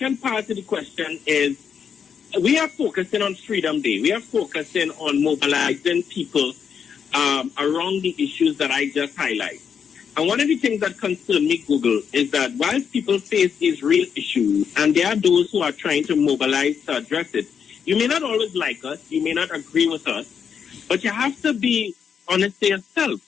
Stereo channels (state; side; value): quieter; right; 7.2 dB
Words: part of the question is we are focusing on Freedom Day. We are focusing on mobilizing people around the issues that I just highlighted. And one of the things that concern me, Google, is that while people face these real issues, and there are those who are trying to mobilize to address it, you may not always like us, you may not agree with us, but you have to be honest to yourself